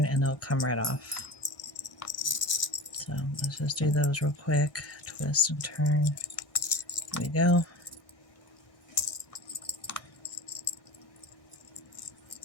and they'll come right off. So let's just do those real quick. Twist and turn. There we go.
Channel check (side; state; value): right; late; 1.6 ms